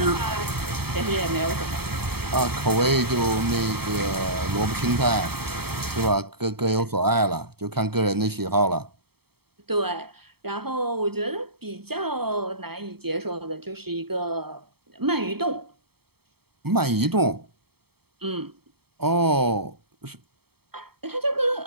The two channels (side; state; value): left; late; 0.96 ms